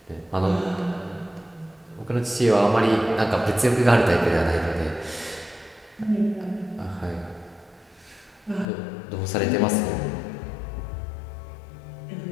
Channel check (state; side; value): drops out; right; at 8.7 s